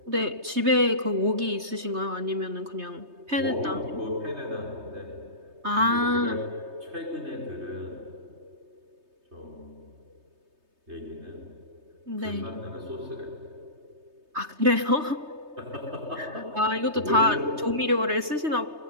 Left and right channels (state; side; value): late; left; 3.2 ms